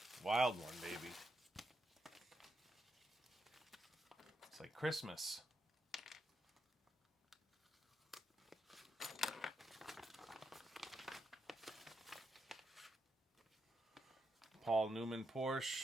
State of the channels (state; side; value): normal; both; correlation 0.83